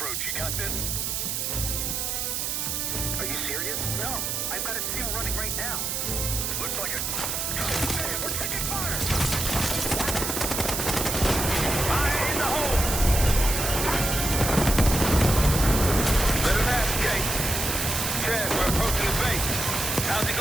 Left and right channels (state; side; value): noise; right; hiss, 1 dB below the sound